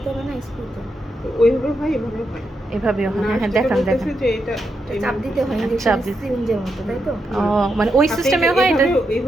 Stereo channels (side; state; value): both; normal; correlation 0.83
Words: হবে না স্ক্রুতে। ওইভাবে হয় এভাবে হয়। এভাবেও হয়। না, হ্যাঁ যেটা দেখান বলতেছে দেখান। যে এটা চাপ দিতে হয় চাপ ইনজেকশন দিতে- সিরিঞ্জের মতো, তাই তো? ও মানে ওই সিস্টেমে হয় এটা?